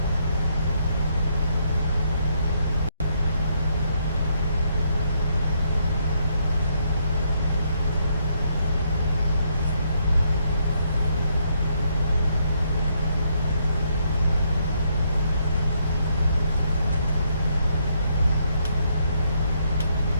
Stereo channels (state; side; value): inverted; both; correlation -0.74